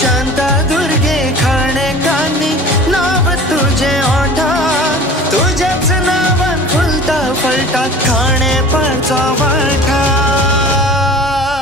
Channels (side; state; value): both; normal; correlation 0.41